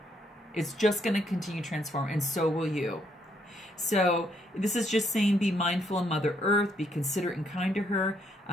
It's just going to continue to transform, and so will you. So this is just saying, be mindful of Mother Earth, be considerate and kind to her.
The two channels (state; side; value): normal; both; correlation 0.72